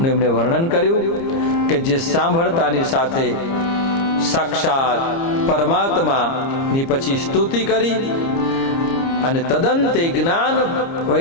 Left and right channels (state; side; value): late; right; 30 ms